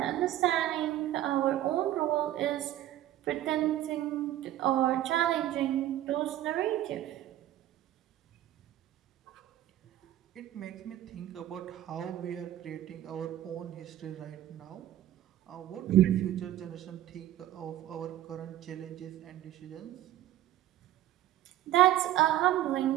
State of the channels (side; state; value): left; quieter; 13.4 dB